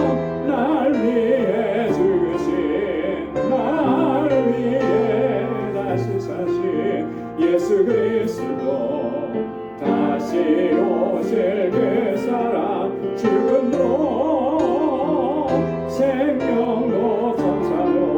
날 위해 죽으신 날 위해 다시 사신 예수 그리스도 다시 오실 그 사랑 죽음도 생명도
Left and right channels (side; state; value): both; identical; correlation 1.00